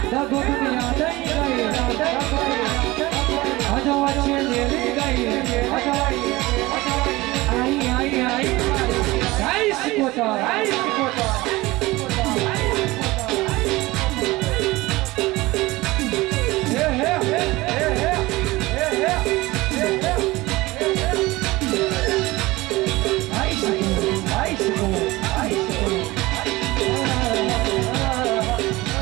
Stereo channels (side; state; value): left; quieter; 20.3 dB